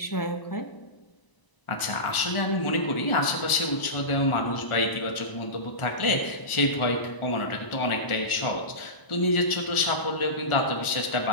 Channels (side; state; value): right; late; 1.0 ms